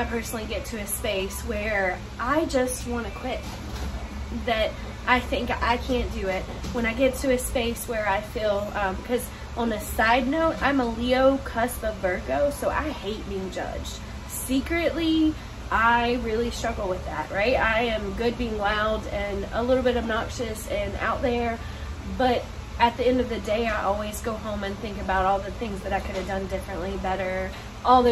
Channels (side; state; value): both; identical; correlation 1.00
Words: personally get to a space where I just want to quit, that I think I can't do it, when I get to a space where I feel, because on a side note, I'm a Leo cusp of Virgo, so I hate being judged. Secretly, I really struggle with that, right? I am good being loud and a little bit obnoxious and out there, but at the end of the day, I always go home and think about all the things that I could have done differently, better, all